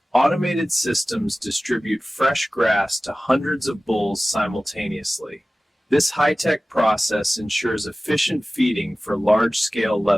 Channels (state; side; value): normal; both; correlation 0.97